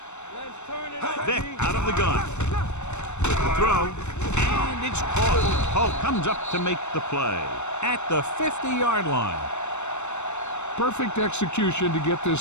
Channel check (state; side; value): late; right; 0.83 ms